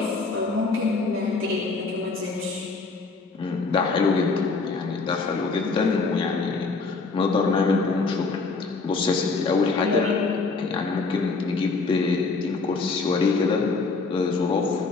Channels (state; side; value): quieter; right; 4.1 dB